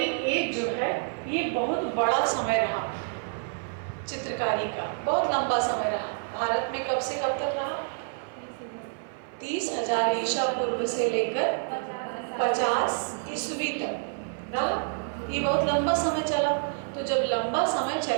एज जो है ये बहुत बड़ा समय रहा चित्रकारी का, बहुत लंबा समय रहा। भारत में कब से कब तक रहा? 30,000 ईसा पूर्व से लेकर 50 ईस्वी तक रहा। ये बहुत लंबा समय चला। तो जब लंबा समय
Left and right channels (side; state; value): left; silent; 55 dB below the other